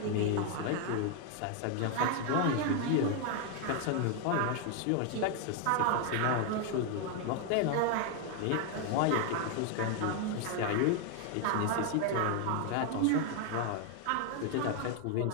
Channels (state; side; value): different; both; correlation 0.01